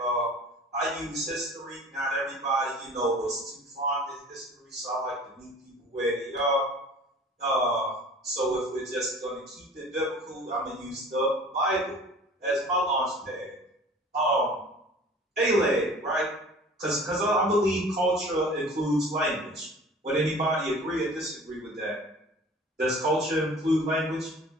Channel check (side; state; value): both; normal; correlation 0.45